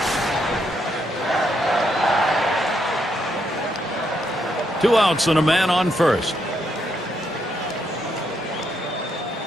Two outs and a man on first.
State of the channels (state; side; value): normal; both; correlation 0.77